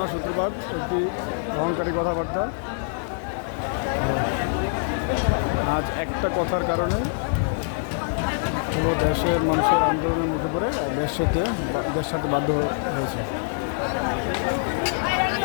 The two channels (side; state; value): right; silent; digital silence